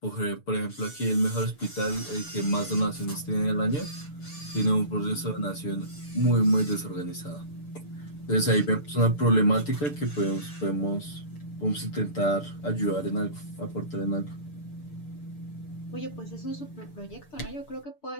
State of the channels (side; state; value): right; late; 6.8 ms